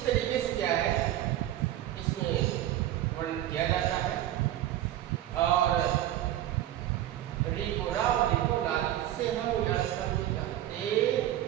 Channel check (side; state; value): left; quieter; 13.1 dB